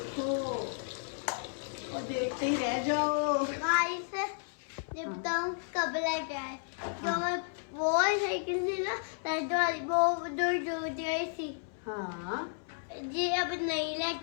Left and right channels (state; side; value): silent; right; 56 dB below the other